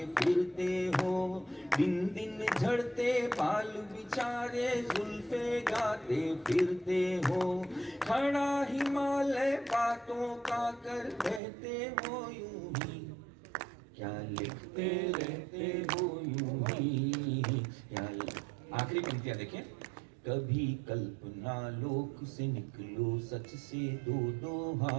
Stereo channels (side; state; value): left; drops out; at 11.4 s